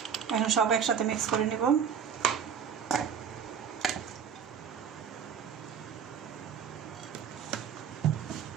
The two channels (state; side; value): quieter; left; 7.5 dB